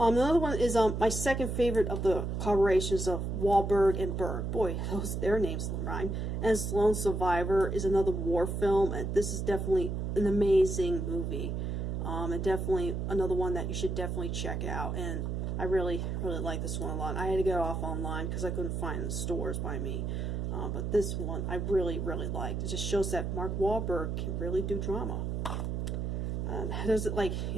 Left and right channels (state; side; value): noise; right; hum, 2 dB below the sound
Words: one is my second favorite of the collaborations of Wahlberg and Berg. Boy, their names rhyme. And Lone Survivor is another war film, and this is definitely an amazing movie. And definitely another one that you should definitely check out. And I really, really like this one a lot. I had to get it off online because I couldn't find it in the stores by me. But this one I really, really liked. It just shows that Mark Wahlberg can really do drama. There's